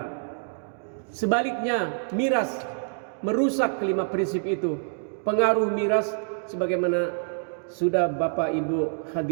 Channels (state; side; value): silent; left; digital silence